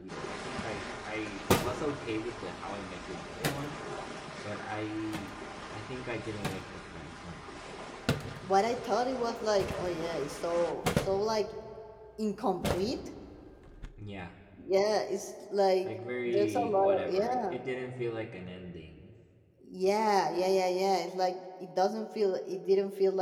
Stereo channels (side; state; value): both; identical; correlation 1.00